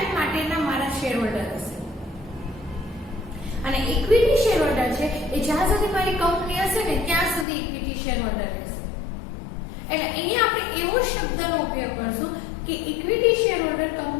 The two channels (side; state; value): right; drops out; at 7.5 s